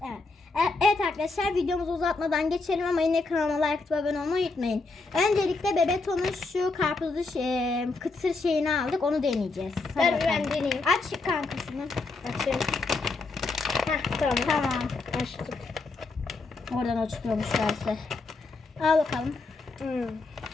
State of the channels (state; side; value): quieter; right; 3.7 dB